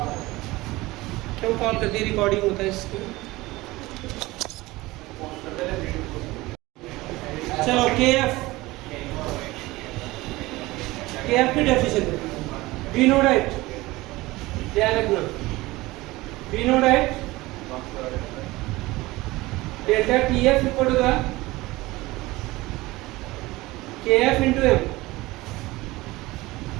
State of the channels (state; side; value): quieter; left; 19.9 dB